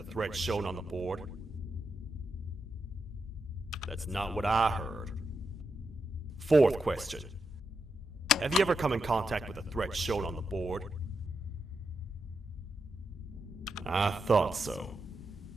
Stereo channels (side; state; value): both; normal; correlation 0.86